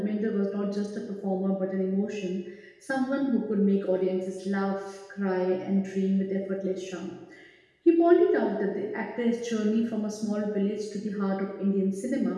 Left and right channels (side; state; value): both; identical; correlation 1.00